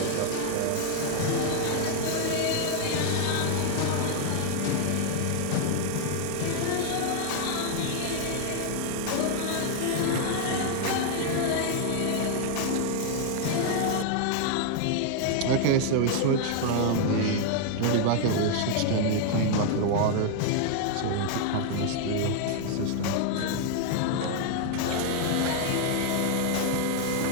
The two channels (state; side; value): different; both; correlation 0.00